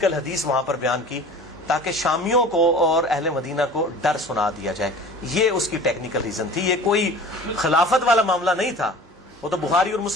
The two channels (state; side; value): normal; both; correlation 0.41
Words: حدیث وہاں پر بیان کی تاکہ شامیوں کو اور اہل مدینہ کو ڈر سنا دیا جائے۔ یہ اس کی ٹیکنیکل ریزن تھی، یہ کوئی خلافت والا معاملہ نہیں تھا۔ وہ تو بخاری اور